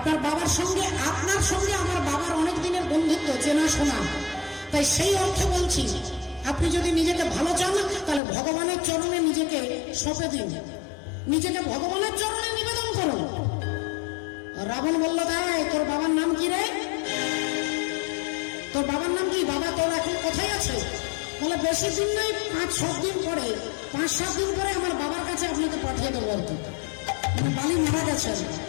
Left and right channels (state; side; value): drops out; right; at 8.2 s